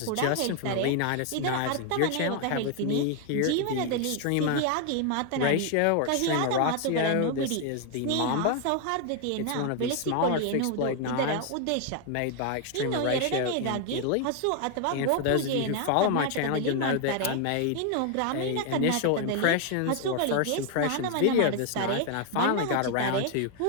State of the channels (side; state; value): both; different; correlation 0.01